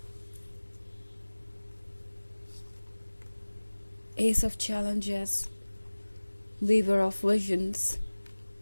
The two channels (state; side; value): inverted; both; correlation -1.00